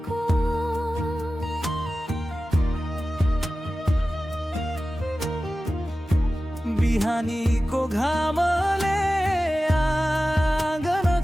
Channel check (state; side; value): normal; both; correlation 0.95